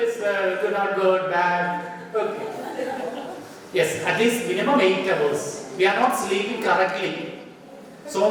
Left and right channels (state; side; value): identical; both; correlation 1.00